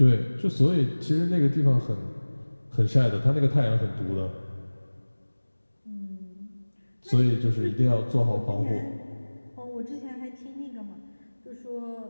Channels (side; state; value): both; inverted; correlation -1.00